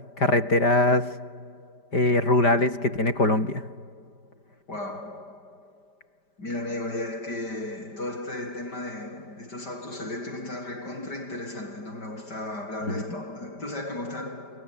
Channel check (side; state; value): right; late; 5.1 ms